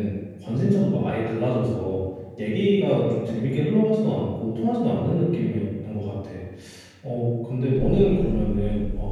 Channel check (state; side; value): identical; both; correlation 1.00